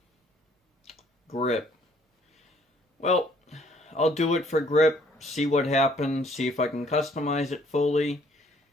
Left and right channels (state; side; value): normal; both; correlation 0.62